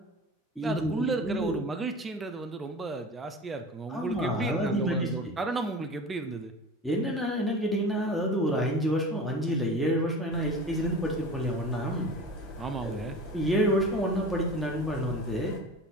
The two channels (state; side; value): normal; both; correlation 0.36